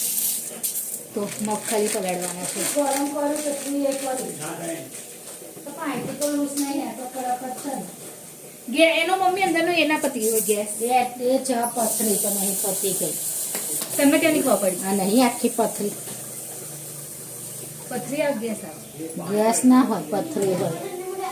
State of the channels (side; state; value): both; identical; correlation 1.00